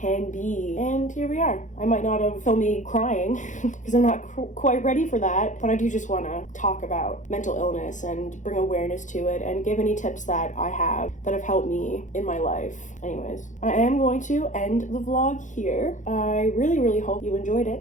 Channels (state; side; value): late; right; 0.36 ms